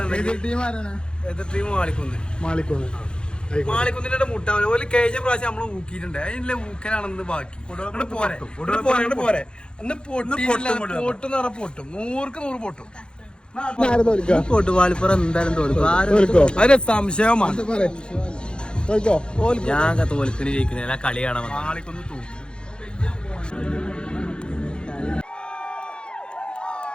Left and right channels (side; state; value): right; late; 0.051 ms